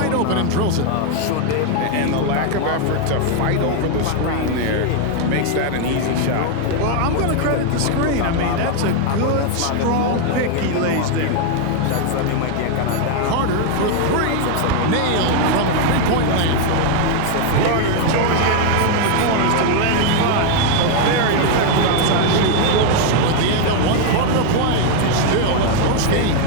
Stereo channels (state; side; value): different; both; correlation 0.01